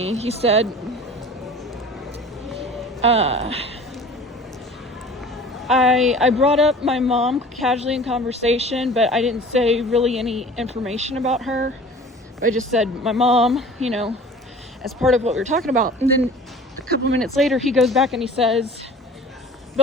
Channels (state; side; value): normal; both; correlation 0.44